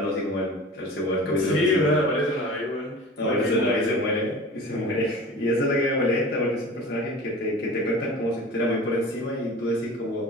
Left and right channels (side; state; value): both; normal; correlation 0.38